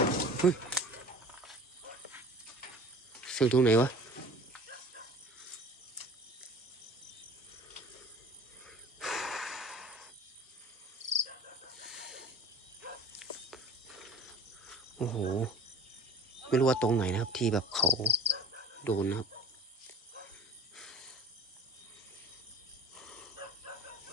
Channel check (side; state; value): both; normal; correlation 0.41